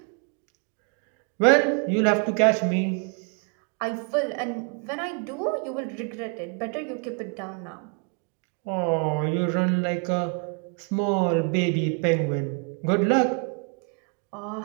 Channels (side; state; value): left; quieter; 38.5 dB